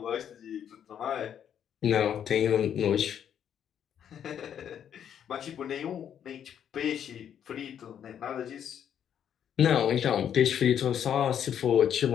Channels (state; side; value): quieter; right; 9.1 dB